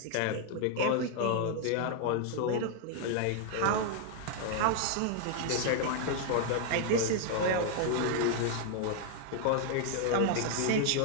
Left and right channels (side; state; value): both; different; correlation 0.00